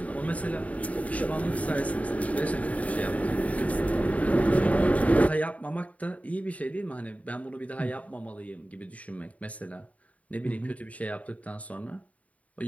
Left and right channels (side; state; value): right; late; 0.068 ms